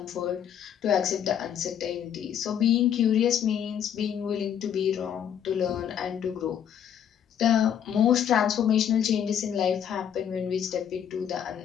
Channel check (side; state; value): right; quieter; 9.0 dB